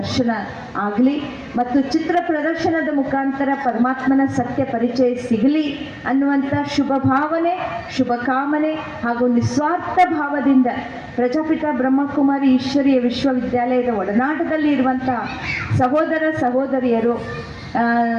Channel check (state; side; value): identical; both; correlation 1.00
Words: ಆಗಲಿ ಮತ್ತು ಚಿತ್ರ ಪ್ರದರ್ಶನದ ಮುಖಾಂತರ ಪರಮಾತ್ಮನ ಸತ್ಯ ಪರಿಚಯ ಸಿಗಲಿ ಅನ್ನುವಂಥ ಶುಭ ಭಾವನೆ, ಶುಭ ಕಾಮನೆ ಹಾಗೂ ನಿಸ್ವಾರ್ಥ ಭಾವದಿಂದ ಪ್ರಜಾಪಿತ ಬ್ರಹ್ಮಕುಮಾರಿ ಈಶ್ವರೀಯ ವಿಶ್ವವಿದ್ಯಾಲಯದ ಒಡನಾಟದಲ್ಲಿ ಇರುವಂಥ ಸಹೋದರ ಸಹೋದರಿಯರು